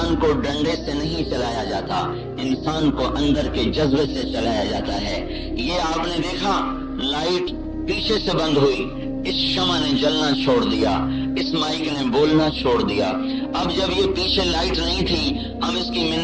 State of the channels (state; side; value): identical; both; correlation 1.00